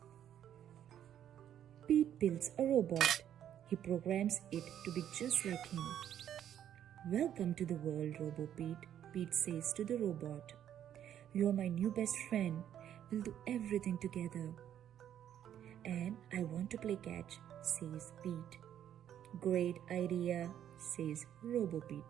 Pete builds a robot. He programs it to be just like him. Welcome to the world, Robo-Pete, Pete says to the robot. You are my new best friend. We'll do everything together. And I want to play catch, says Pete. Great idea, says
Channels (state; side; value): quieter; left; 10.3 dB